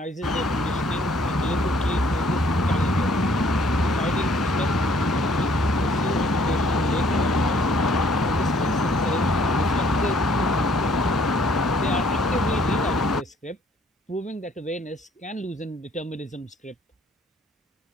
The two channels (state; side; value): normal; both; correlation 0.62